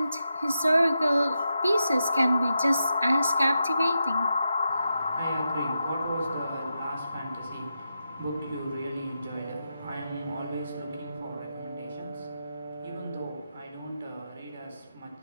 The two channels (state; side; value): inverted; both; correlation -0.87